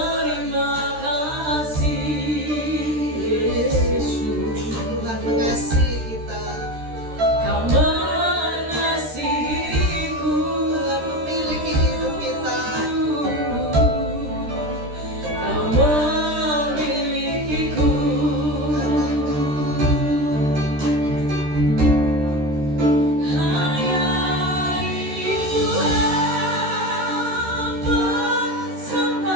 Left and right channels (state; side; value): late; left; 13 ms